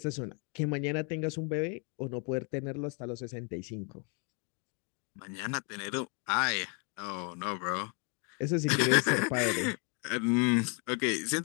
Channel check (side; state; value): right; quieter; 36.5 dB